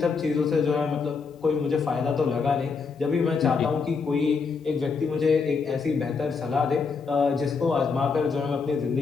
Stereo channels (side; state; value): right; quieter; 5.1 dB